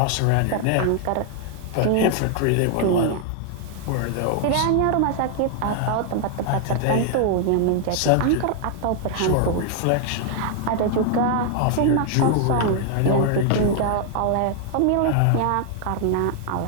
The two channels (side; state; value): both; different; correlation 0.00